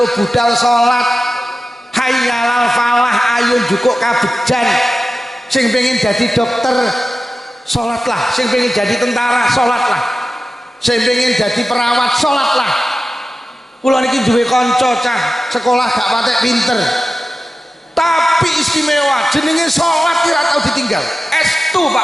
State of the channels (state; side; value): normal; both; correlation 0.94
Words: budal salat, hayyalal falah, ayo jukuk kabejan. Sing pengen jadi dokter salatlah, sing pengen jadi tentara salatlah, sing pengen jadi perawat salatlah. Kula niki duwe kanca cah sekolah gak patek pinter, tapi istimewa, jenenge salat ora tau ditinggal. Estu